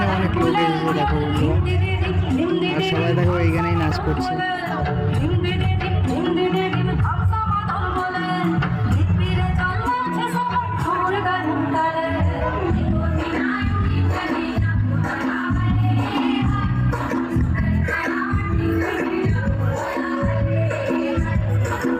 অনেক লোক এসেছে দেখো বন্ধুরা, আর সবাই দেখো এইখানেই নাচ করছে।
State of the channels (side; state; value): both; identical; correlation 1.00